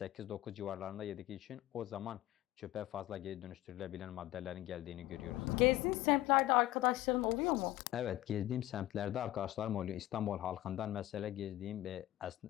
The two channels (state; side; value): quieter; right; 15.3 dB